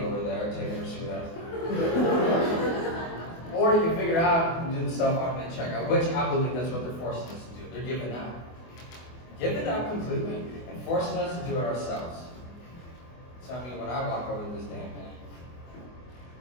there taking her sweet out. Or you can figure out and do the self-automated checkout, which I believe that's what they're forcing us to do. They're giving up. Giving up completely and forcing us to do it ourselves. So I mean, when I walk over to this damn thing,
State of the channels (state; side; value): late; right; 24 ms